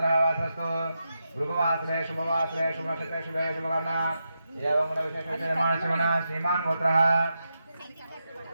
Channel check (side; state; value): both; inverted; correlation -0.87